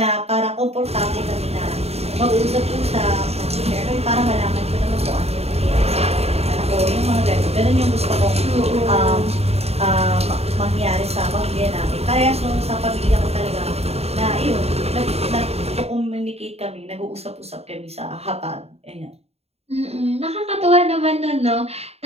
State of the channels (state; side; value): late; left; 0.30 ms